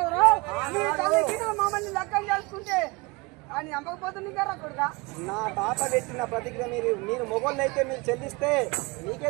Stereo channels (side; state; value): left; quieter; 25.9 dB